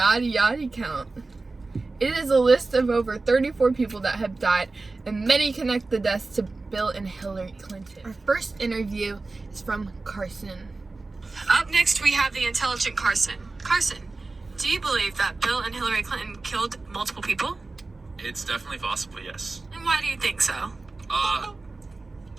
count? It is a list of over 34 people that have died, and many connect the deaths to Bill and Hillary Clinton. Our first interview is from Carson. Up next, we have the intelligent Carson. Carson, do you believe that Bill and Hillary Clinton killed multiple people? It's definitely possible, yes. And why do you think so? I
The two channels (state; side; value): quieter; left; 3.5 dB